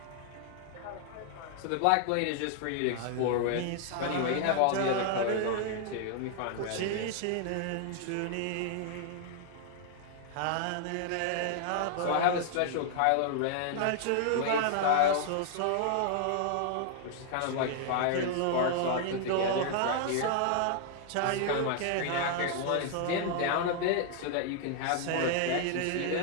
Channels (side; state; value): both; different; correlation 0.00